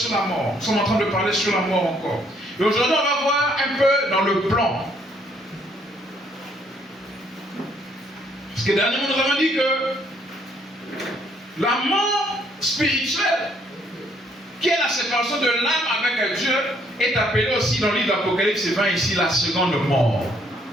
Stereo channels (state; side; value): normal; both; correlation 0.67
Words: la mort. Nous sommes en train de parler sur la mort encore. Et aujourd'hui, on va voir un peu dans le plan. Parce que dernièrement, nous avons dit que la mort spirituelle, qui est la séparation de l'âme avec Dieu, est appelée aussi dans le livre d'Apocalypse 20 ici la seconde mort.